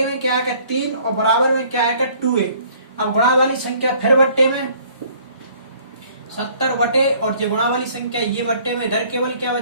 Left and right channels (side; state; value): both; inverted; correlation -0.57